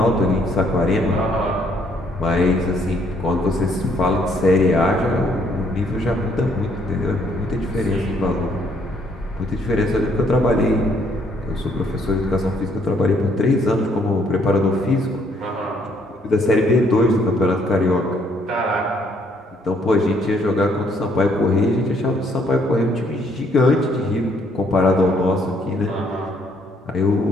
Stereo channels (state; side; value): normal; both; correlation 0.68